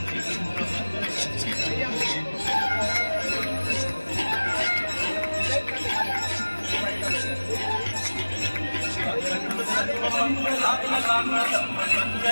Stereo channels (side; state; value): both; inverted; correlation -1.00